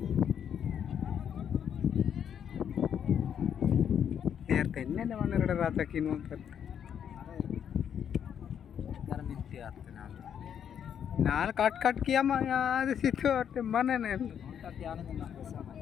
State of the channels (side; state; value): right; quieter; 8.6 dB